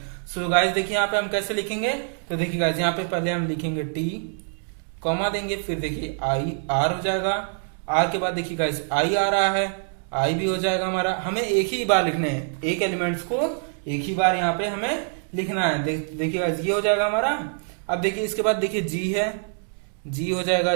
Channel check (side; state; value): left; silent; 62 dB below the other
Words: सो गाइस देखिए यहाँ पे हम कैसे लिखेंगे, तो देखिए गाइस यहाँ पे पहले हम लिखेंगे टी कॉमा देंगे, फिर देखिए आई आर हो जाएगा, आर के बाद देखिए गाइस आई आ रहा है, आई भी हो जाएगा हमारा। हमें एक ही बार लिखना है, एक एलिमेंट्स को एक ही बार यहाँ पे हमें लिखना है। देखिए गाइस ये हो जाएगा हमारा। अब देखिए इसके बाद देखिए जी है, जी हो जाएगा,